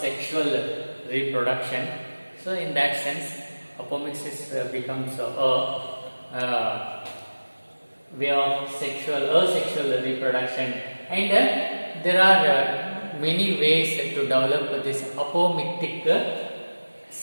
reproduction. So in that sense, apomixis becomes a way of asexual reproduction, and there are many ways to develop this apomictic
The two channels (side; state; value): both; inverted; correlation -1.00